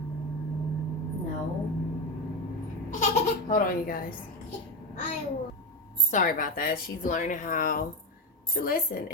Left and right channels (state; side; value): normal; both; correlation 0.15